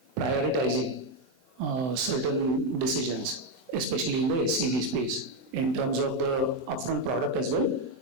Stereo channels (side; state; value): left; late; 23 ms